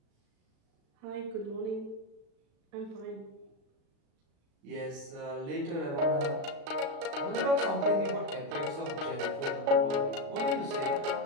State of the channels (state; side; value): late; left; 36 ms